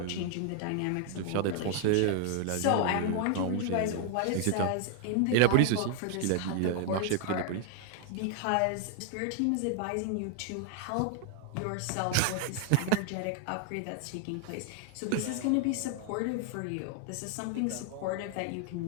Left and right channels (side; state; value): both; different; correlation 0.00